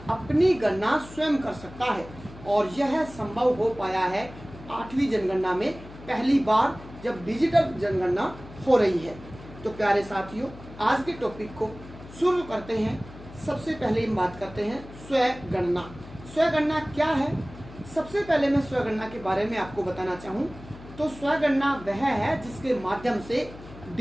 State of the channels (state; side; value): noise; left; hum, 17 dB below the sound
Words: गणना स्वयं कर सकता है और यह संभव हो पाया है 8वीं जनगणना में पहली बार जब डिजिटल जनगणना हो रही है। तो प्यारे साथियों आज के टॉपिक को शुरू करते हैं। सबसे पहले हम बात करते हैं स्वगणना। स्वगणना क्या है? सबसे पहले मैं स्वगणना के बारे में आपको बताना चाहूँ तो स्वगणना वह है जिसके माध्यम से